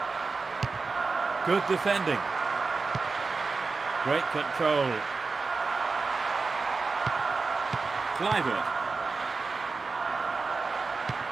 Good defending. Great control. Kluivert.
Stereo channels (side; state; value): left; quieter; 4.2 dB